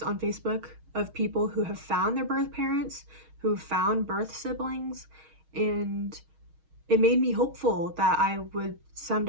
on Facebook of people who have found their birth parents, who found birth siblings, and it made me hopeful that I would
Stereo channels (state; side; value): late; left; 6.4 ms